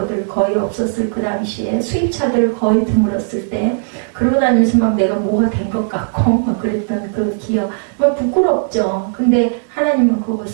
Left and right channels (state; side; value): silent; left; 68 dB below the other